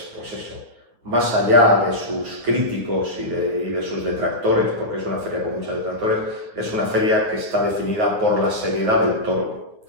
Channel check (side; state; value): left; late; 9.4 ms